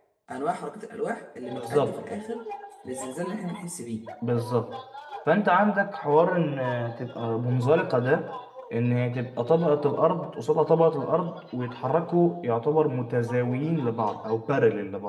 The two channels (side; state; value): both; identical; correlation 1.00